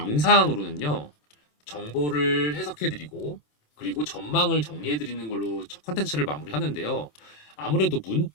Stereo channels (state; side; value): late; right; 27 ms